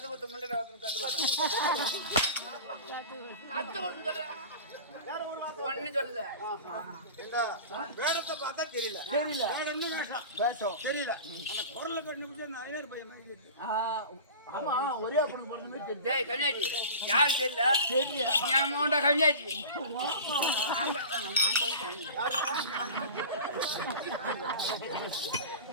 கொடுத்து முன்னாடி கத்து கொடுத்து ஒன்னு சொல்லல. வேடத்தை பார்த்தா தெரியல. தெரியல வேஷம் தெரியல. அந்த குரலை கண்டு அந்த ஐநூறு பையன். ஆமா, ஒரே பொண்ணு பொண்ணு. டேய் கன்யாஜி, யாரு தெரியல? தெரியல. என் மோண்ட கன்யாஜி.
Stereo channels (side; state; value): both; inverted; correlation -0.35